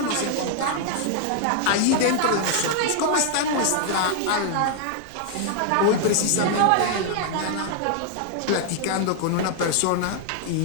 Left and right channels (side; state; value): both; different; correlation 0.00